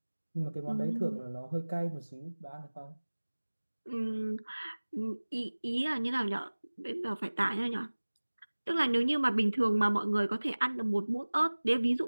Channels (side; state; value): both; inverted; correlation -1.00